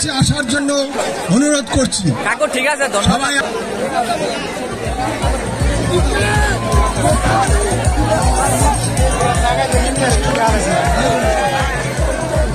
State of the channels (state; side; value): identical; both; correlation 1.00